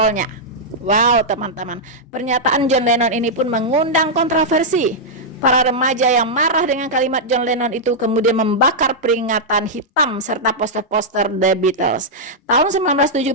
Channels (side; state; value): both; normal; correlation -0.07